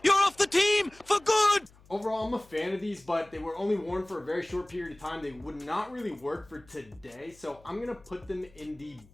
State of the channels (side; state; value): left; noise; hum, 26 dB below the sound